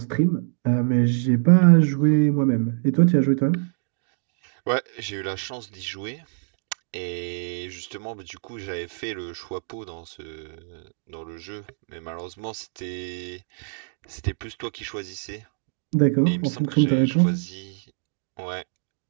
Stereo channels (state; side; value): silent; left; digital silence